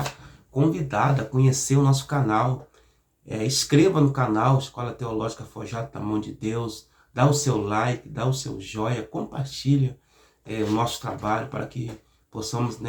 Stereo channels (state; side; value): identical; both; correlation 1.00